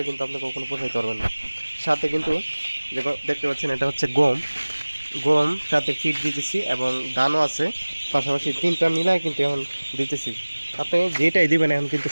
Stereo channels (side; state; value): both; inverted; correlation -1.00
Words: কিন্তু আপনি কখনো পোষাইতে পারবেন না। সাথে কিন্তু দেখতে পাচ্ছেন এটা হচ্ছে গম সাথে ফিট দিতেছি এবং ধানও আছে, পাশাপাশি 3টা মিলায় কিন্তু এখন দিতেছি। আপনি যেটাই দিবেন এখন কিন্তু